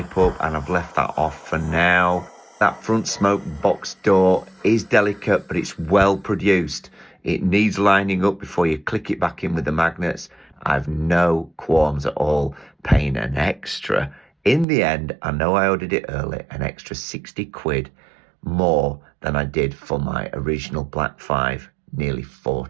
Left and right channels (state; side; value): drops out; left; at 14.7 s